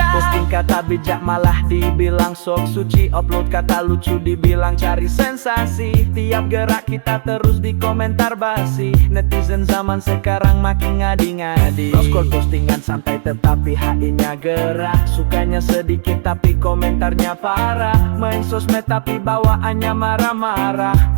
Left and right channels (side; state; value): left; silent; digital silence